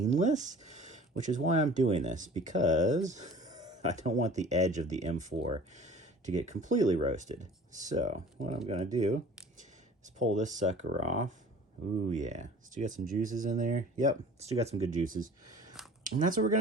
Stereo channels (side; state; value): both; normal; correlation 0.46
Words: which is why I'm doing this, because I don't want the edge of the M4 to get completely roasted. So what I'm gonna do is pull this sucker off. Ooh, yeah, still got some juices in there. Yep, still got some good juices. And that's what we're